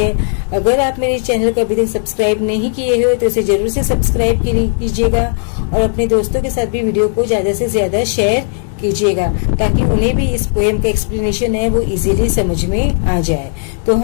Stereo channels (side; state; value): right; silent; digital silence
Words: अगर आप मेरे चैनल को अभी तक सब्सक्राइब नहीं किए हो तो इसे जरूर से सब्सक्राइब कीजिएगा और अपने दोस्तों के साथ भी वीडियो को ज्यादा से ज्यादा शेयर कीजिएगा ताकि उन्हें भी इस पोयम का एक्सप्लेनेशन है वो इजीली समझ में आ जाए। तो